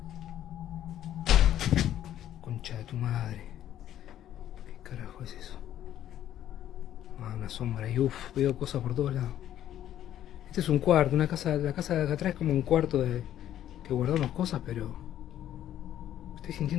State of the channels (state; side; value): quieter; right; 11.6 dB